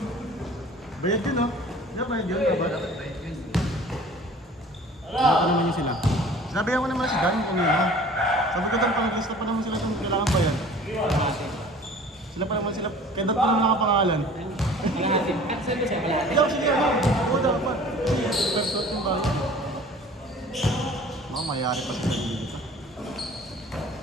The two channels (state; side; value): normal; both; correlation 0.46